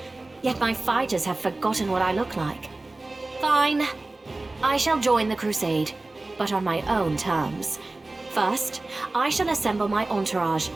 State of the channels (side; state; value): left; quieter; 3.0 dB